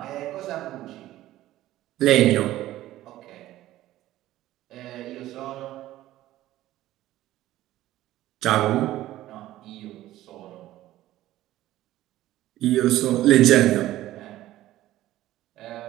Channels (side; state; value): left; quieter; 14.9 dB